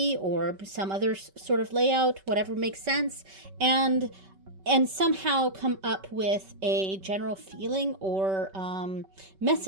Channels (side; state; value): left; late; 5.2 ms